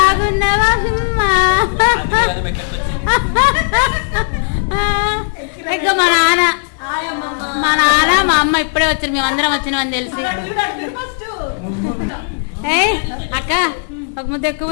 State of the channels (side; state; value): right; silent; digital silence